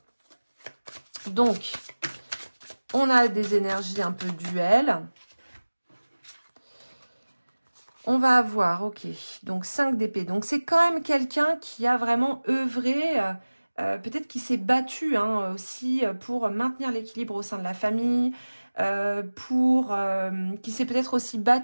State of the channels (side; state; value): both; inverted; correlation -1.00